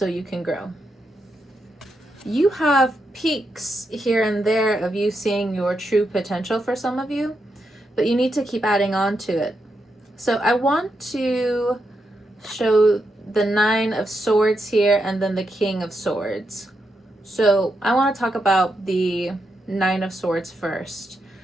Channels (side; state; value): both; normal; correlation 0.84